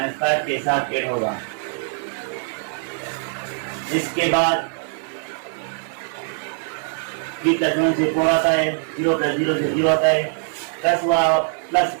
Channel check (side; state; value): left; silent; 64 dB below the other